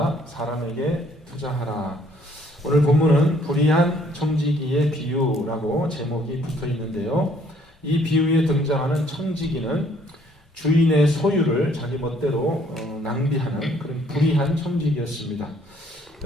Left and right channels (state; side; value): normal; both; correlation 0.63